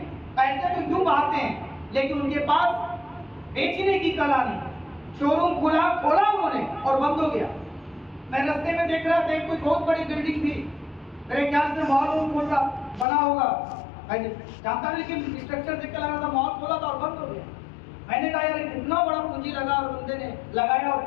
पैसे तो यूं आते हैं लेकिन उनके पास बेचने की कला नहीं। शोरूम खोला उन्होंने और बंद हो गया। मैं रास्ते में देख रहा था कोई बहुत बड़ी बिल्डिंग थी, मेरे ख्याल से मॉल खोल रहा बना होगा, जानता नहीं लेकिन स्ट्रक्चर देख के लगा था मॉल खोला था और बंद हो गया। मैंने कहा यार कितना बड़ा पूंजी लगा और बंदे ने लगाया और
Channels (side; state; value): right; drops out; at 13.1 s